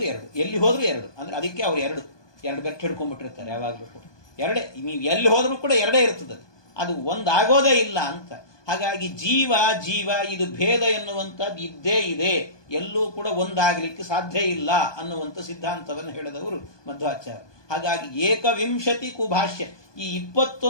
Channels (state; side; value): late; right; 1.2 ms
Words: ಎಲ್ಲಿ ಹೋದ್ರೂ 2 ಅಂದ್ರೆ ಅದಕ್ಕೆ ಅವ್ರು 2 ಬೆಟ್ಟು ಹಿಡ್ಕೊಂಡ್ಬಿಟ್ಟಿರ್ತಾರೆ ಯಾವಾಗಲೂ ಕೂಡ. 2 ನೀವು ಎಲ್ಲಿ ಹೋದ್ರೂ ಕೂಡ 2 ಇರ್ತದೆ, ಅದು ಒಂದಾಗೋದೇ ಇಲ್ಲ ಅಂತ. ಹಾಗಾಗಿ ಜೀವ ಇದು ಭೇದ ಎನ್ನುವಂಥದ್ದು ಇದ್ದೇ ಇದೆ, ಎಲ್ಲೂ ಕೂಡ ಒಂದಾಗಲಿಕ್ಕೆ ಸಾಧ್ಯ ಇಲ್ಲ ಅನ್ನುವಂಥ ಸಿದ್ಧಾಂತವನ್ನು ಹೇಳಿದವರು ಮಧ್ವಾಚಾರ್ಯ. ಹಾಗಾಗಿ 21 ಭಾಷ್ಯ, ಈ